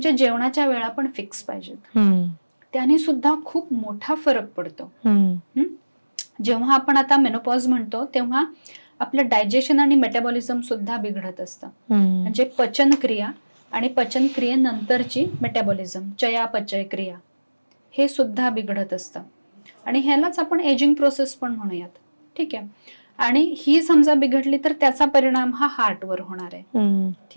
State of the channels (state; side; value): inverted; both; correlation -1.00